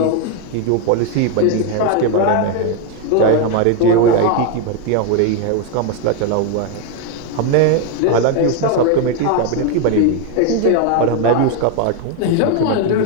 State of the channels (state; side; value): different; both; correlation 0.01